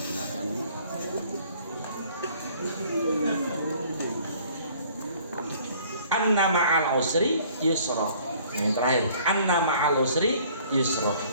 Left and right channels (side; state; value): both; inverted; correlation -0.56